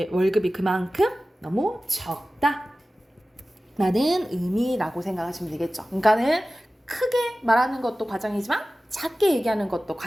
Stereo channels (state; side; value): normal; both; correlation 0.96